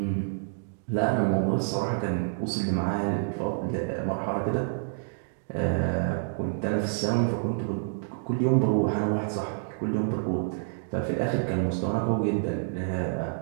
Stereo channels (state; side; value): silent; left; digital silence